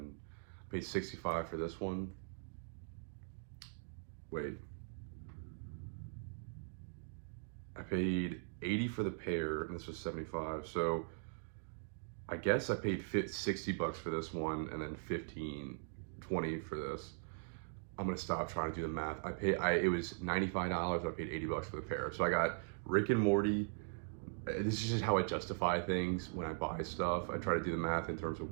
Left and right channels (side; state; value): left; silent; digital silence